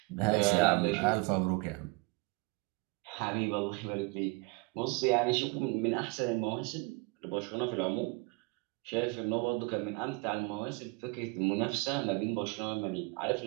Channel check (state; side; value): quieter; left; 27.1 dB